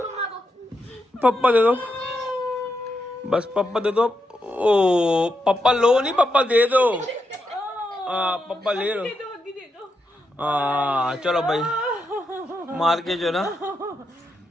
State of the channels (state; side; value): normal; both; correlation 0.84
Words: पापा दे दो, बस पापा दे दो। ओ पापा लो नहीं, पापा दे दो। पापा ले लो। चलो भाई मार के जो ना